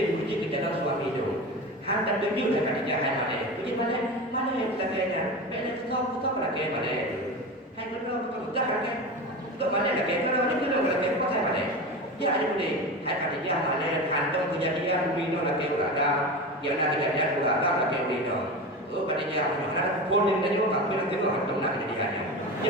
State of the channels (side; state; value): both; normal; correlation 0.26